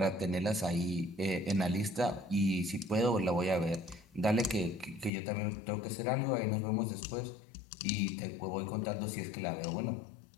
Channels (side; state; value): right; drops out; at 5.1 s